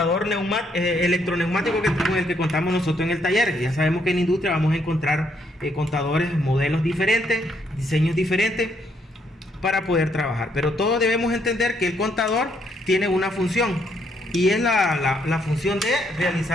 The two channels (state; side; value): normal; both; correlation 0.72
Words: electroneumático con el que contamos nosotros en el taller. Ya sabemos que en la industria vamos a encontrar contadores, modelos diferentes, diseños diferentes para poder trabajar. Pero todos debemos entender que el contador tiene una función, y es la función de